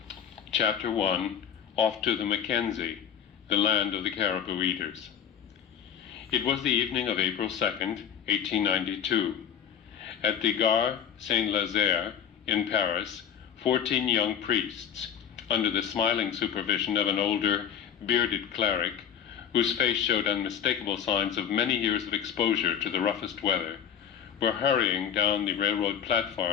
Chapter 1, Off to the Mackenzie, the land of the caribou eaters. It was the evening of April 2nd, 1892. At the Gare Saint-Lazare in Paris, 14 young priests, under the smiling supervision of an older, bearded cleric, whose face showed unmistakable signs of many years of exposure to the roughest weather, were hurrying down the railroad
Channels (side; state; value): right; quieter; 8.8 dB